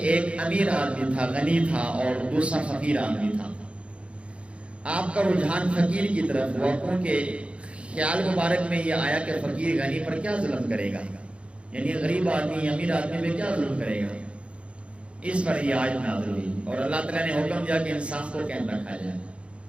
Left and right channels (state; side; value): late; left; 0.060 ms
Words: ایک امیر آدمی تھا، غنی تھا، اور دوسرا فقیر آدمی تھا. آپ کا رجحان فقیر کی طرف ہوا، کیونکہ خیال مبارک میں یہ آیا کہ فقیر غنی پر کیا ظلم کرے گا، یعنی غریب آدمی امیر آدمی پہ کیا ظلم کرے گا، اس پر یہ آیت نازل ہوئی اور اللہ تعالیٰ نے حکم دیا کہ انصاف کو قائم رکھا جائے۔